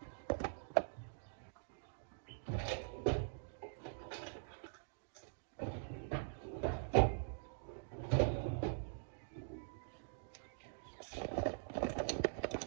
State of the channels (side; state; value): left; silent; digital silence